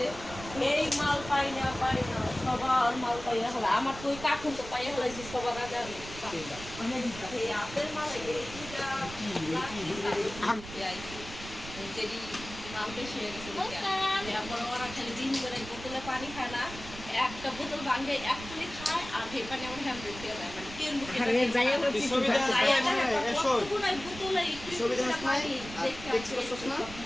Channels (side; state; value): right; noise; rumble, 13 dB below the sound